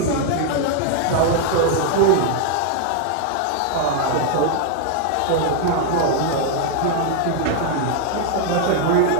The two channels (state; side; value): different; both; correlation 0.00